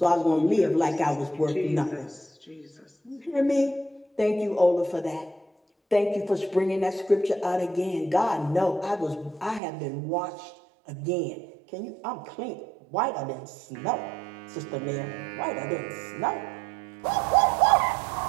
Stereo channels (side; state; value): left; drops out; at 9.6 s